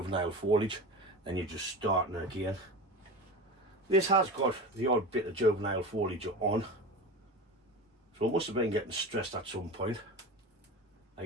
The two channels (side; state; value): both; normal; correlation 0.29